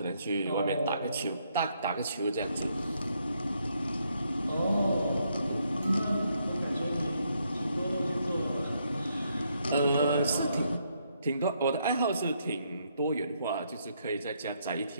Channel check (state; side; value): inverted; both; correlation -0.75